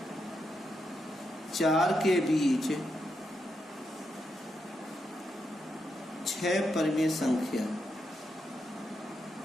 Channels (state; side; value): normal; both; correlation 0.83